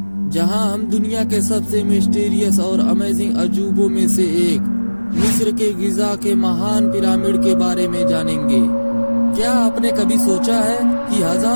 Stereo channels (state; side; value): inverted; both; correlation -1.00